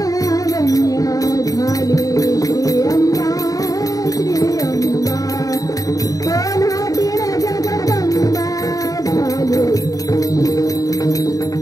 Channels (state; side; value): late; right; 0.17 ms